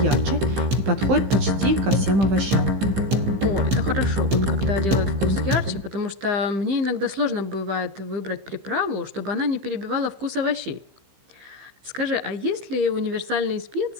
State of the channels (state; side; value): late; left; 15 ms